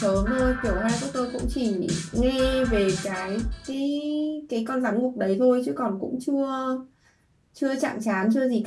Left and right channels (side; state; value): both; identical; correlation 1.00